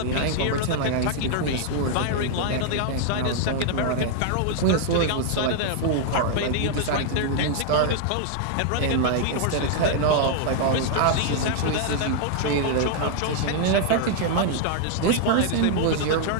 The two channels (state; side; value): different; both; correlation 0.00